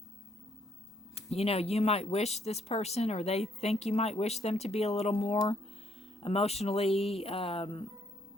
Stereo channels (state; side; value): normal; both; correlation 0.70